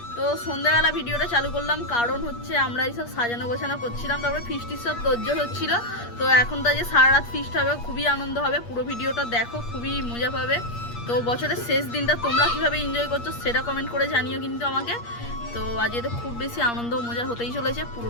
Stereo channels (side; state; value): right; late; 8.5 ms